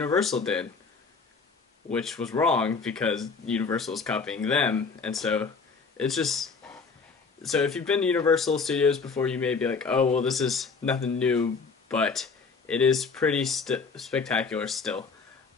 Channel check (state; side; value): quieter; right; 4.9 dB